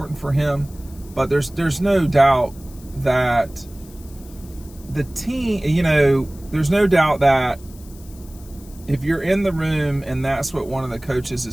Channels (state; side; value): noise; left; hiss, 23 dB below the sound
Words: for him. But there's no doubt that the team, there's no doubt that if you're in the room and that's what one of the coaches